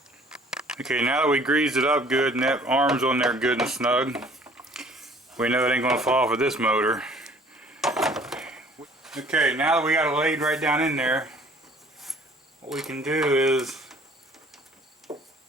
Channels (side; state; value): both; normal; correlation 0.54